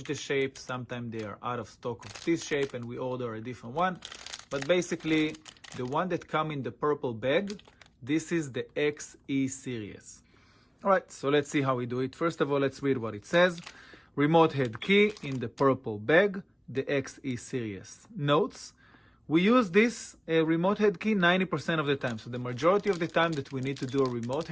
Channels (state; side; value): identical; both; correlation 1.00